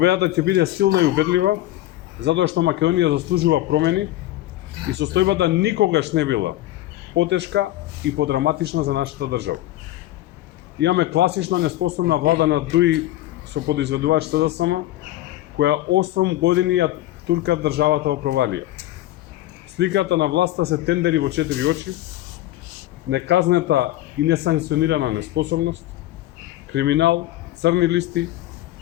ќе биде силна и убедлива, затоа што Македонија заслужува промени и состојбата никогаш не била потешка и подраматична за нашата држава. Имаме класична неспособна влада на ДУИ со подизведувач СДСМ, која 8 години ја турка државата во провалија. Сликата на власта се тендери во 4 очи, неказнета и несанкционирана неспособност, криминал, црни листи,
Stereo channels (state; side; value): quieter; right; 15.2 dB